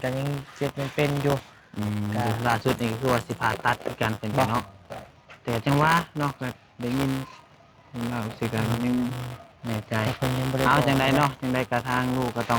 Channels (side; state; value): both; identical; correlation 1.00